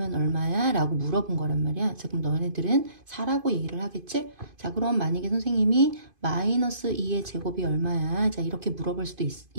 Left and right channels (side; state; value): left; late; 2.5 ms